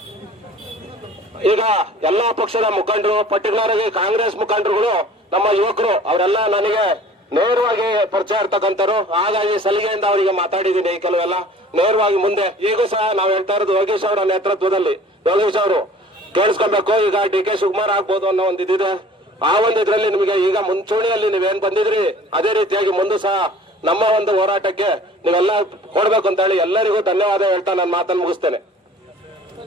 ಈಗ ಎಲ್ಲಾ ಪಕ್ಷದ ಮುಖಂಡರು, ಪರ್ಟಿಕ್ಯುಲರ್ ಆಗಿ ಕಾಂಗ್ರೆಸ್ ಮುಖಂಡರುಗಳು, ನಮ್ಮ ಯುವಕರು, ಅವರೆಲ್ಲ ನನಗೆ ನೇರವಾಗಿ ಪರಿಚಯ ಇರ್ತಕ್ಕಂಥವ್ರು. ಹಾಗಾಗಿ ಸಲಿಗೆಯಿಂದ ಅವರಿಗೆ ಮಾತಾಡಿದ್ದೀನಿ. ಕೆಲವೆಲ್ಲ ನೇರವಾಗಿ ಮುಂದೆ ಈಗೂ ಸಹ ನಾವು ಹೇಳ್ತಾ ಇರೋದು ಯೋಗೇಶ್ ಅವರ ನೇತೃತ್ವದಲ್ಲಿ. ಯೋಗೇಶ್ ಅವರು ಕೇಳಿಸ್ಕೊಬೇಕು. ಈಗ DK ಶಿವಕುಮಾರ್ ಆಗ್ಬೋದು ಅನ್ನೋ ಒಂದು ಇದಿದೆ. ಆ ಒಂದು ಇದ್ರಲ್ಲಿ ನಿಮಗೆ ಈಗ ಮುಂಚೂಣಿಯಲ್ಲಿ ನೀವೇನ್ ಬಂದಿದ್ರಿ ಅದೇ ರೀತಿಯಾಗಿ ಮುಂದೆ ಸಹ ನಮ್ಮ ಒಂದು ಹೋರಾಟಕ್ಕೆ ನೀವೆಲ್ಲ ಕೊಡ್ಬೇಕು ಅಂತ ಹೇಳಿ ಎಲ್ಲರಿಗೂ ಧನ್ಯವಾದ ಹೇಳ್ತಾ ನಾನು ಮಾತನ್ನು ಮುಗಿಸ್ತೇನೆ.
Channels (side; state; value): both; normal; correlation 0.47